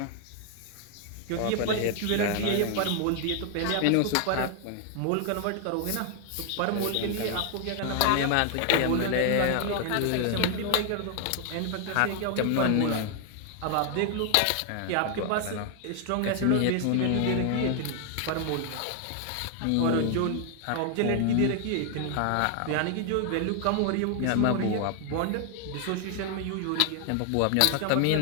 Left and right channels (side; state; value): both; different; correlation 0.00